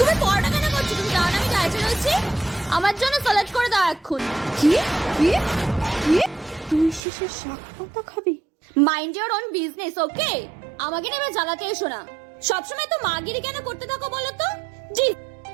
পরোটা কেন করছো? তুমি জানো না আমি ডায়েটে রয়েছি? আমার জন্য স্যালাড করে দাও এখন। কি কি কি? তুই শেষে শাক পাতা খাবি? মাইন্ড ইওর ওন বিজনেস, ওকে? আমাকে নেবে জ্বালাতে এসো না। সবসময় তো মাগিরি কেন করতে থাকো বলো তো? জি,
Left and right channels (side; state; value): left; drops out; at 7.0 s